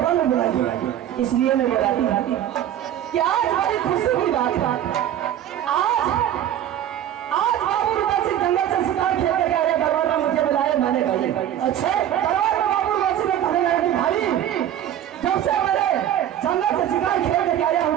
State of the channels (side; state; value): left; quieter; 11.1 dB